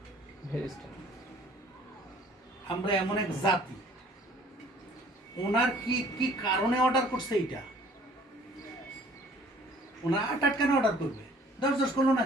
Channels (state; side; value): normal; both; correlation 0.55